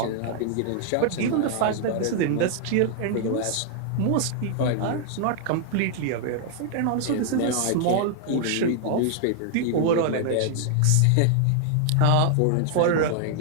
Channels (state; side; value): different; both; correlation 0.00